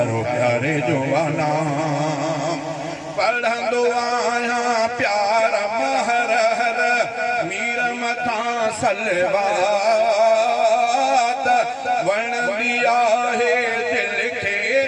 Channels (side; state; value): both; identical; correlation 1.00